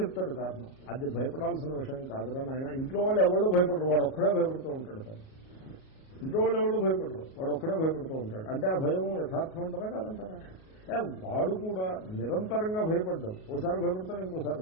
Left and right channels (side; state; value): right; late; 38 ms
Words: కారణం. అది భయపడాల్సిన విషయం కాదురా నాయన. ఇంట్లో వాళ్ళు ఎవరో భయపడరు, వాడు ఒక్కడే భయపడుతూ ఉంటాడు. కానీ ఇంట్లో వాళ్ళు ఎవరో భయపడరు, వాడు ఒక్కడే భయపడుతూ ఉంటాడు. అంటే ఆ భయం యథార్థం ఉంటుందా కాదంటారా? వాడు కూడా నిరంతరంగా భయపడ్డాం. ఓసారి భయపడతాడు, ఇంకోసారి